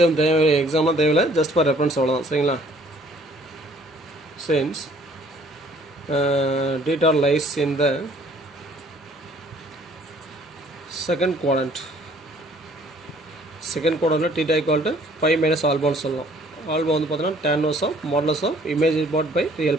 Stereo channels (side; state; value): both; normal; correlation 0.58